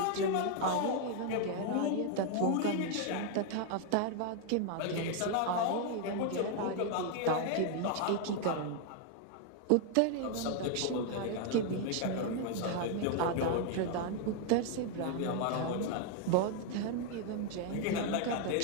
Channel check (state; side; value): different; both; correlation 0.00